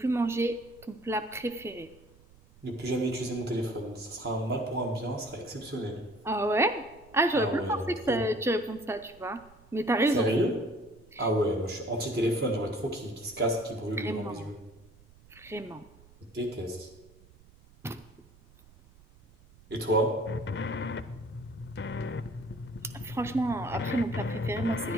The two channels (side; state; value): right; noise; rumble, 25 dB below the sound